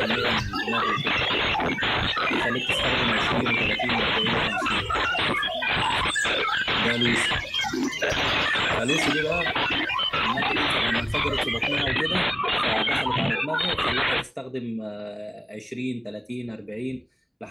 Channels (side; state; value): both; identical; correlation 1.00